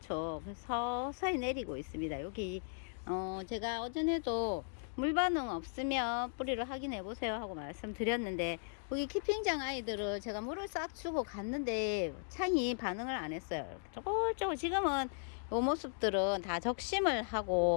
그래서 서서히 내리고 있습니다. 여기 제가 어전에도 물 반응 없으면 뿌리를 확인해 보세요 하고 말씀드렸는데, 여기 캠핑장 아이들을 제가 물을 싹 주고 갔는데 창이 반응을 안 했어요. 조금 지금은 이 모습들은 다 적심을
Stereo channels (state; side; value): silent; right; digital silence